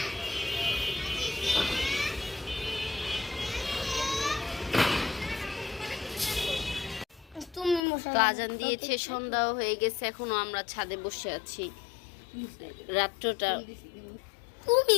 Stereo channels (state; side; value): drops out; right; at 7.8 s